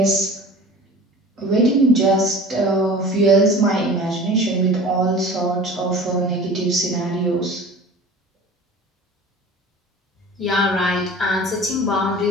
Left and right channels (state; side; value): normal; both; correlation 0.40